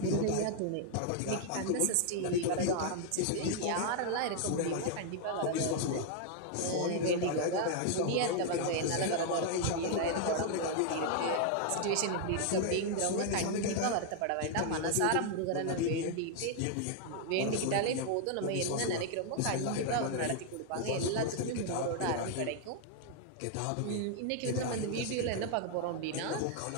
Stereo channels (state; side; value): different; both; correlation 0.00